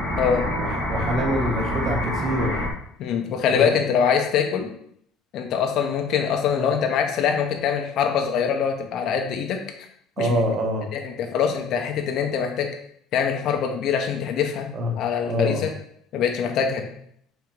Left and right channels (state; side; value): quieter; right; 4.8 dB